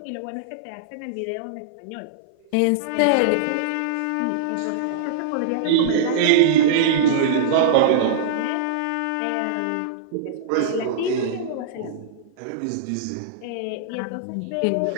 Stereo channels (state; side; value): different; both; correlation -0.02